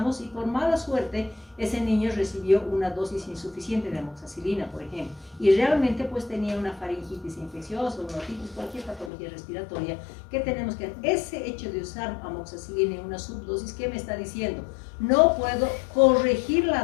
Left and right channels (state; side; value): drops out; right; at 9.1 s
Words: y por mala suerte ese niño recibió una dosis insuficiente de amoxicilina, por ejemplo, y realmente pues tenía una faringitis infecciosa, una otitis, cualquier patología respiratoria que tenemos que... Ese hecho de usar amoxicilina en una subdosis, ¿qué me está diciendo? No puedo corregir